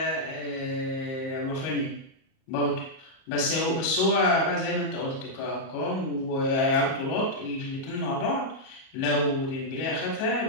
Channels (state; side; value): late; right; 38 ms